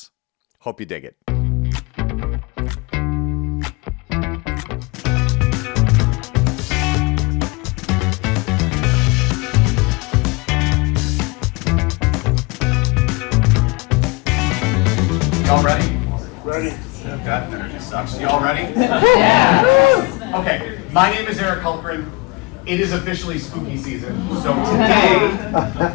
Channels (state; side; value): quieter; right; 25.7 dB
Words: Hope you dig it. Y'all ready? Ready. That energy sucks. Y'all ready? Yeah. Okay, my name is Hultgren. It is officially spooky season, so today